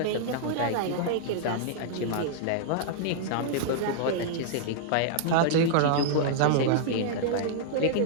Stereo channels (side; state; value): both; different; correlation -0.01